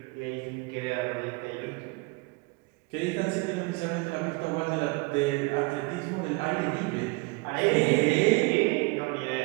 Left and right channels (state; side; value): quieter; left; 27.1 dB